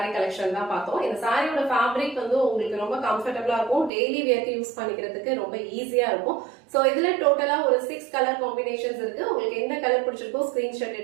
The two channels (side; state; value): left; drops out; at 3.9 s